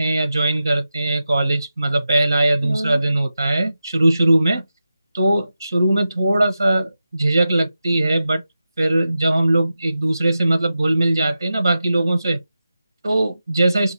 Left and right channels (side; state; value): both; inverted; correlation -0.91